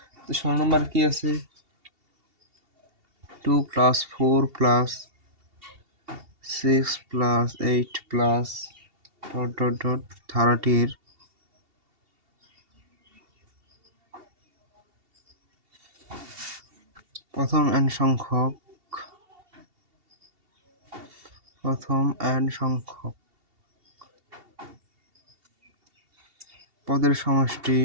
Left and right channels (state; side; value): late; left; 2.7 ms